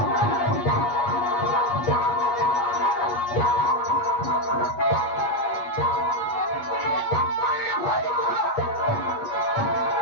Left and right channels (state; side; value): late; right; 8.3 ms